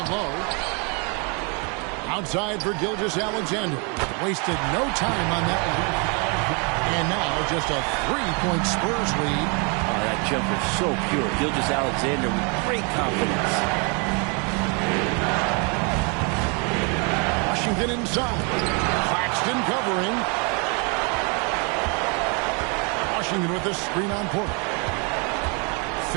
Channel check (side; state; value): left; quieter; 34.1 dB